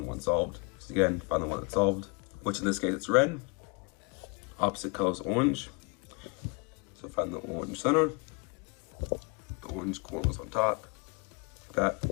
1 solved. So again, find the one that's solved, which in this case it's red, opposite color is orange. So find the orange center, the orange corners on top, like that.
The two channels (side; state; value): right; quieter; 30.9 dB